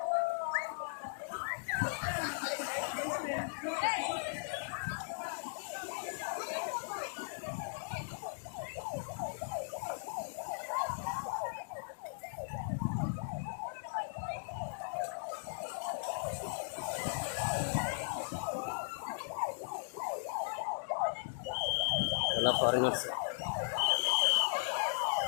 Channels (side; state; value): right; silent; digital silence